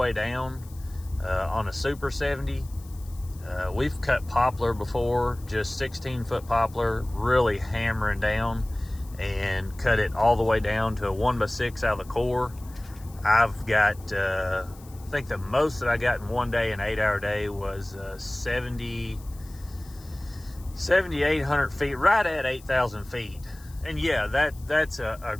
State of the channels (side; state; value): left; noise; hiss, 23 dB below the sound